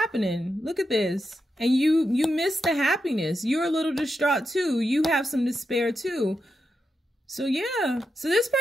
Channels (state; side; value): normal; both; correlation 0.87